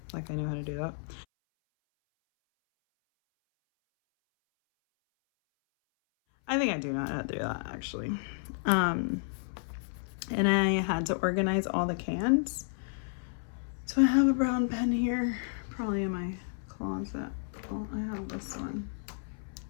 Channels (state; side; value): silent; right; 57 dB below the other